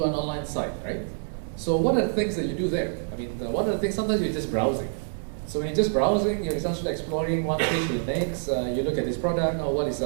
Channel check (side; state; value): left; silent; digital silence